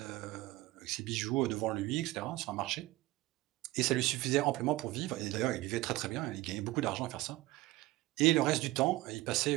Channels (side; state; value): left; quieter; 18.4 dB